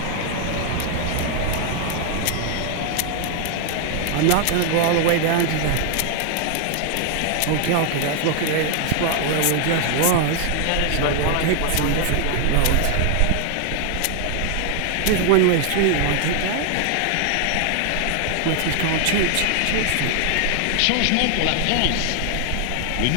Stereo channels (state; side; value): different; both; correlation 0.00